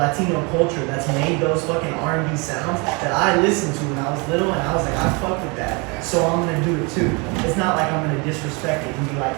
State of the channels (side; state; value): left; quieter; 30.1 dB